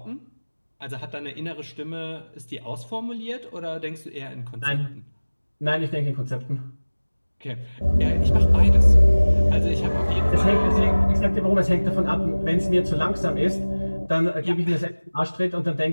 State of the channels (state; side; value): inverted; both; correlation -1.00